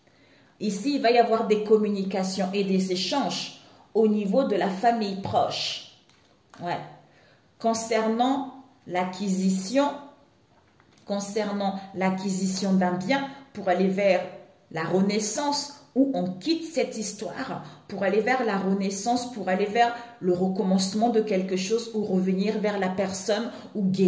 Ici, il va y avoir des communications et des échanges au niveau de la famille proche. Ouais. Concernant l'acquisition d'un bien pour aller vers la renaissance, où on quitte cette histoire pour aller vers la renaissance, pour aller vers le recommencement de quelque chose ou revenir vers la personne ou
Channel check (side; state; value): both; identical; correlation 1.00